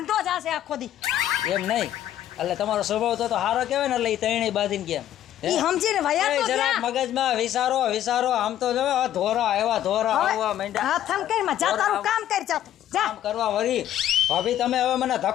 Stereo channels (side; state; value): right; quieter; 11.8 dB